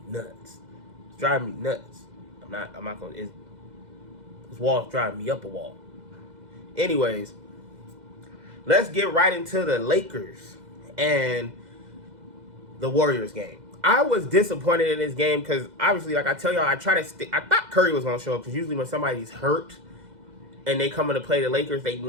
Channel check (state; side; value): late; left; 2.0 ms